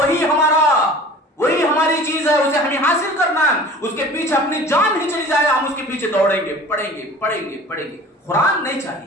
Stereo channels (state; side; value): normal; both; correlation 0.43